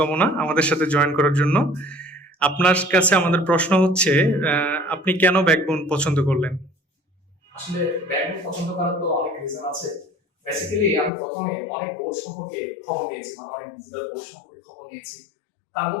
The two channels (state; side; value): drops out; right; at 11.1 s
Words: আমাদের সাথে জয়েন করার জন্য। আপনার কাছে আমাদের প্রশ্ন হচ্ছে, আপনি কেন ব্যাকবোন পছন্দ করলেন? আসলে ব্যাকবোন পছন্দ করার তো অনেক রিজন আছে। বেসিক্যালি আমি প্রথমে অনেক বোর্ড সম্পর্কে খবর নিয়েছি, মানে অনেক ডিজিটাল বোর্ড সম্পর্কে খবর নিয়েছি। তার